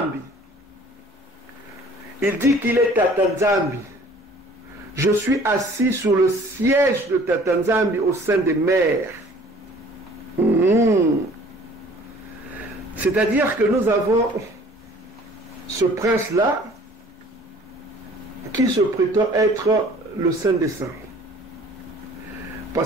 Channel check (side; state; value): both; normal; correlation 0.52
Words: Il dit qu'il est Tatanzambi. Je suis assis sur le siège de Tatanzambi au sein des mers. C'est-à-dire que nous avons ce prince-là qui se prétend être le Saint des Saints.